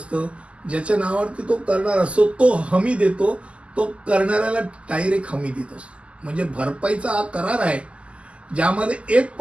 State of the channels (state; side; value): late; left; 0.057 ms